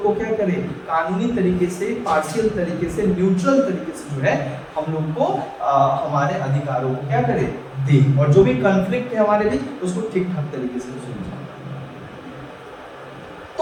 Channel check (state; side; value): identical; both; correlation 1.00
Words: को क्या करे, कानूनी तरीके से, पार्शियल तरीके से, न्यूट्रल तरीके से जो है हम लोग को हमारे अधिकारों को क्या करे, दे, और जो भी कॉन्फ्लिक्ट है हमारे बीच उसको ठीक ठाक तरीके से सुलझाए।